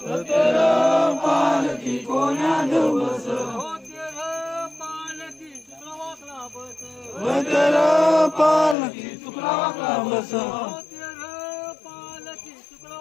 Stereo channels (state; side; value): drops out; right; at 8.8 s